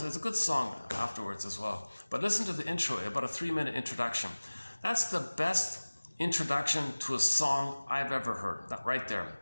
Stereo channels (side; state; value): both; inverted; correlation -1.00